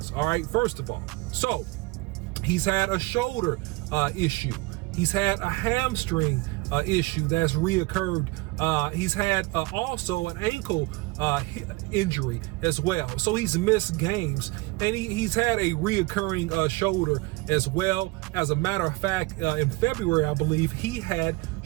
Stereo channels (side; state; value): left; quieter; 23.2 dB